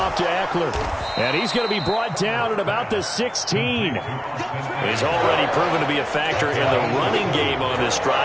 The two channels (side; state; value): both; identical; correlation 1.00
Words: to Eckler. And he's going to be brought down at about the 16. He's already proven to be a factor in the running game on this